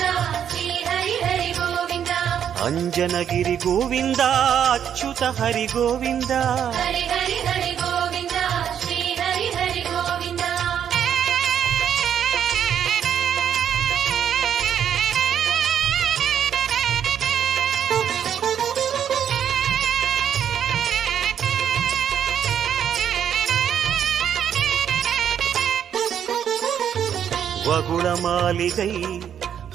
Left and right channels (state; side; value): quieter; left; 9.0 dB